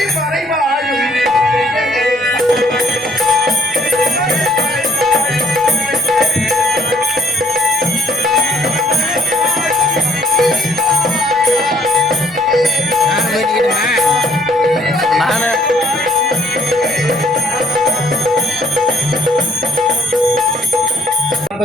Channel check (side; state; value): both; normal; correlation 0.63